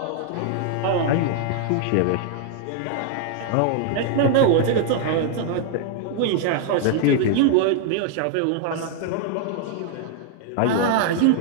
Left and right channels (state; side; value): different; both; correlation 0.00